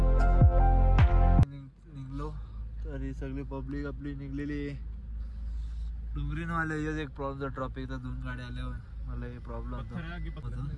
सगळी पब्लिक आपली निघलेली. डोंगरीन वाले एक प्रॉब्लेम ट्रॉफिकचा 2 गाड्या आल्यावर मला हे प्रॉब्लेम होता.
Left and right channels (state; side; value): identical; both; correlation 1.00